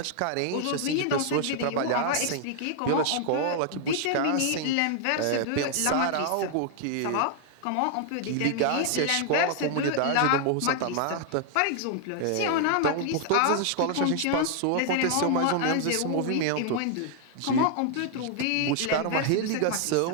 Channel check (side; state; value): both; different; correlation 0.00